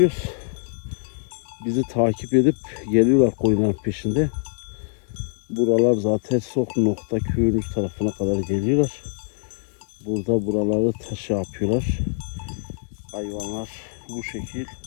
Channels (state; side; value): silent; right; 63 dB below the other